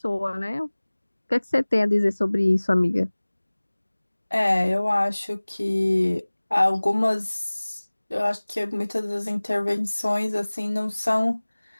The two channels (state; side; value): inverted; both; correlation -1.00